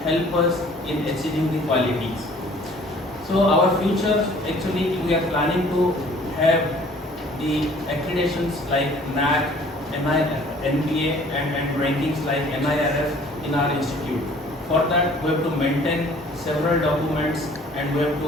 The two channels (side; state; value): both; normal; correlation 0.53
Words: help us in achieving the qualities. So our future, actually, we are planning to have the accreditations like NAC, NBA, and rankings like NIRF in our institute. For that, we have to maintain several documents and we have